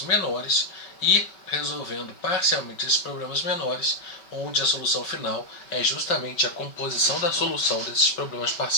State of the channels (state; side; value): late; right; 5.3 ms